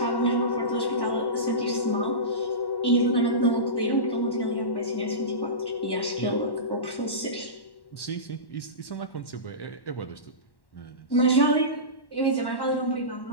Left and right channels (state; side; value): late; right; 1.1 ms